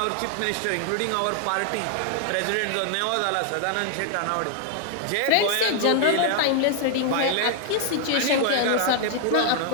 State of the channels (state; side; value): different; both; correlation 0.00